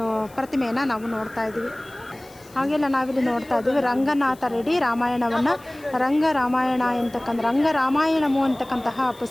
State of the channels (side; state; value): left; noise; hiss, 25 dB below the sound